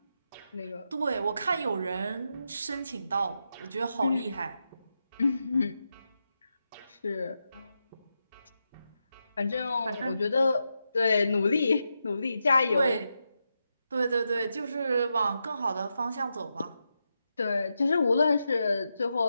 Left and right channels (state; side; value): inverted; both; correlation -0.86